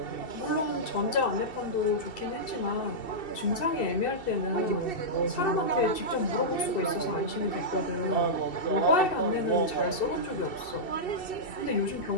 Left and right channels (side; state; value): right; late; 2.7 ms